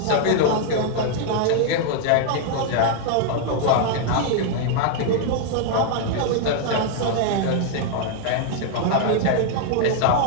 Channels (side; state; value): both; different; correlation 0.00